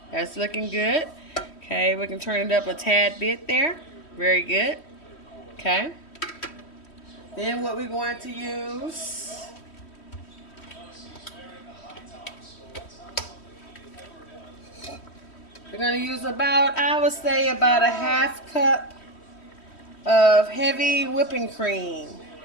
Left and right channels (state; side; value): late; right; 3.1 ms